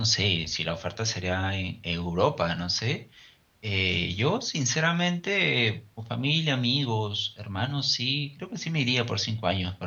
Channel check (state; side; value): identical; both; correlation 1.00